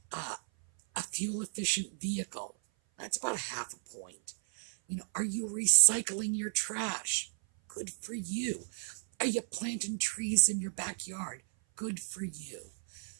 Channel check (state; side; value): silent; left; 55 dB below the other